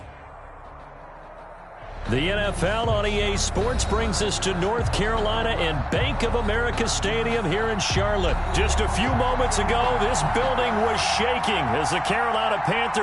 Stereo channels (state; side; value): identical; both; correlation 1.00